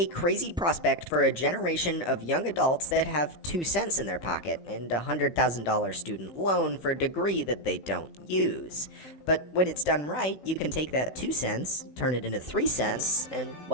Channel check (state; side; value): late; right; 16 ms